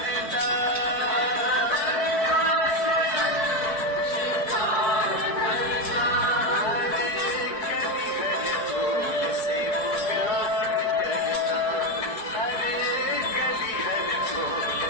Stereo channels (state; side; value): late; right; 4.6 ms